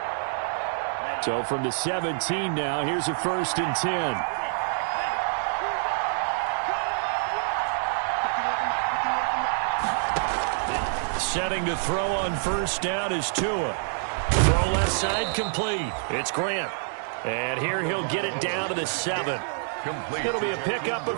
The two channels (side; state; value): left; silent; digital silence